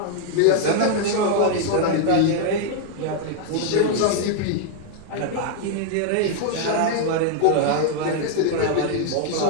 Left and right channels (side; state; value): both; different; correlation 0.00